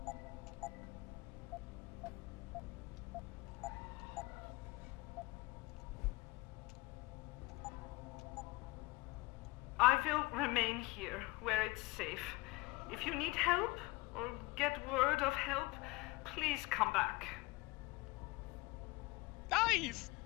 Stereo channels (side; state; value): right; quieter; 23.4 dB